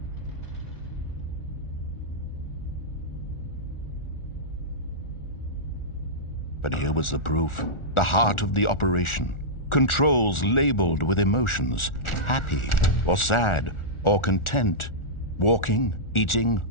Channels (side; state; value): right; late; 1.4 ms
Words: But here was the proof. The heart of the operation. Controls labeled with emotions. Happy, or sad, or content. Walking, eating,